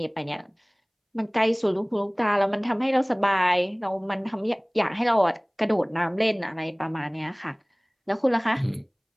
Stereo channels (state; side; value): identical; both; correlation 1.00